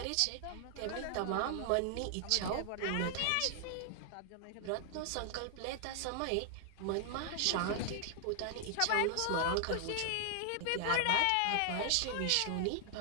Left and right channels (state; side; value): different; both; correlation 0.00